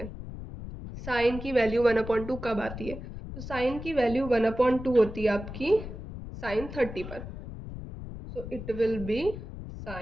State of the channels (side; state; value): left; noise; rumble, 10 dB below the sound